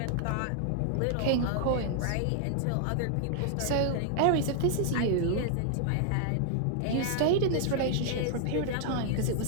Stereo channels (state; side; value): different; both; correlation -0.01